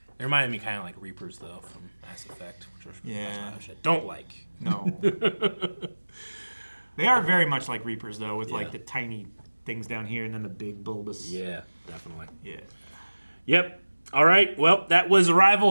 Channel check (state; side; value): inverted; both; correlation -1.00